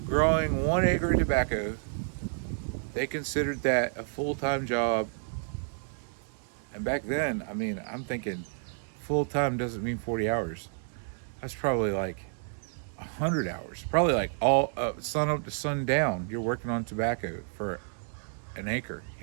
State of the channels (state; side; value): silent; left; digital silence